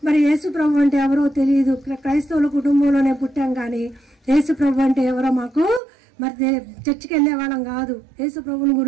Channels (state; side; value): drops out; left; at 5.8 s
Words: మరి యేసు ప్రభు అంటే ఎవరో తెలియదు, క్రైస్తవుల కుటుంబంలోనే పుట్టాం. కానీ యేసు ప్రభు అంటే ఎవరో మాకు మరి చర్చికి వెళ్ళే వాళ్ళం కాదు. యేసు ప్రభుని